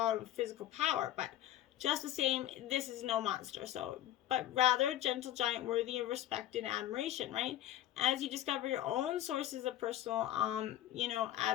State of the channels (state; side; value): quieter; right; 13.1 dB